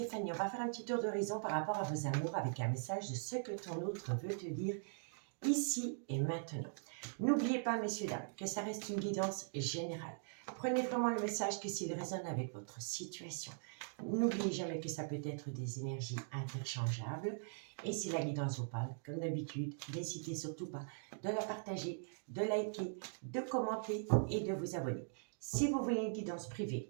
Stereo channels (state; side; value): silent; left; digital silence